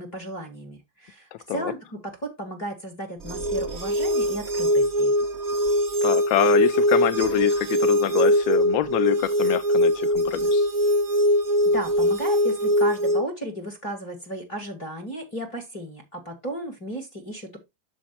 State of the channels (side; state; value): right; late; 3.2 ms